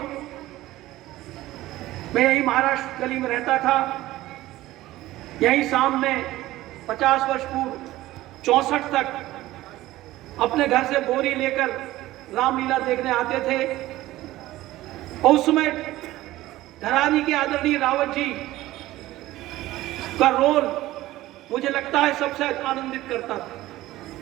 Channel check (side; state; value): left; quieter; 16.4 dB